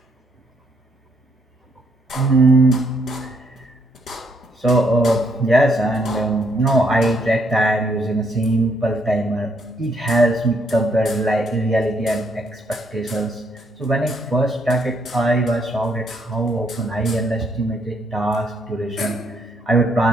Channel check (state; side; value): normal; both; correlation 0.73